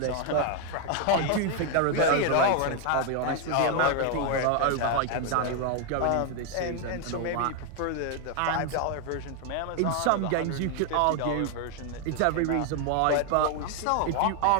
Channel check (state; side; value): different; both; correlation 0.01